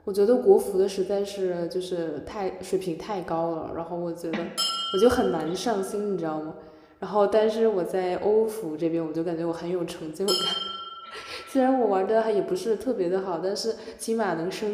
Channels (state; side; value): identical; both; correlation 1.00